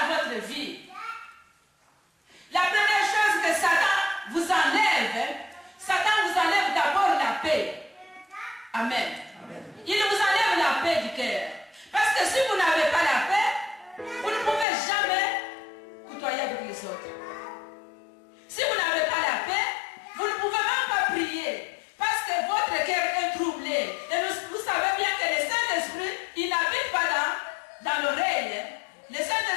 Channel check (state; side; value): drops out; right; at 14.7 s